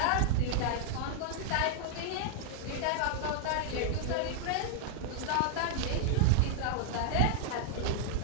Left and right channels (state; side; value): different; both; correlation -0.01